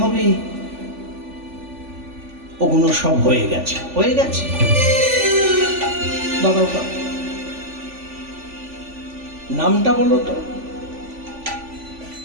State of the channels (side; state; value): left; late; 3.5 ms